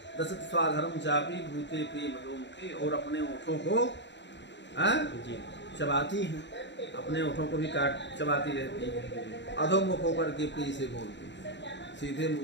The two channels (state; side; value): late; right; 0.52 ms